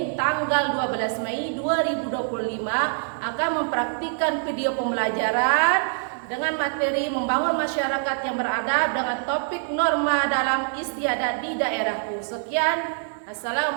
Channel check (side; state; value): left; silent; digital silence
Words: tanggal 12 Mei 2025, akan mempraktikkan video pembelajaran dengan materi membangun masyarakat yang beradab dengan topik norma dalam istiadat di daerahku. Sekian,